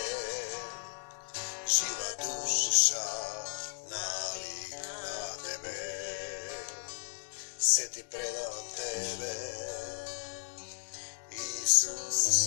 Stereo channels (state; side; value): silent; right; digital silence